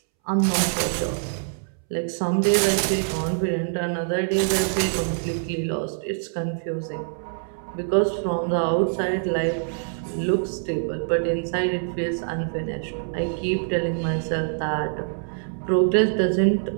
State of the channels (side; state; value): left; silent; 62 dB below the other